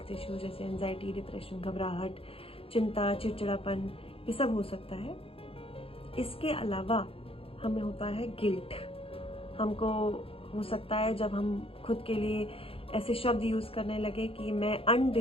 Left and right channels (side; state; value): right; late; 0.27 ms